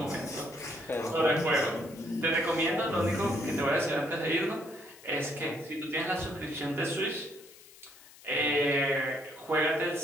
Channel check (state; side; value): noise; left; hiss, 21 dB below the sound